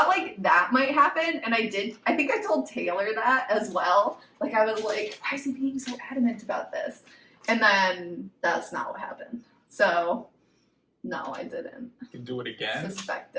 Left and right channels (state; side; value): identical; both; correlation 1.00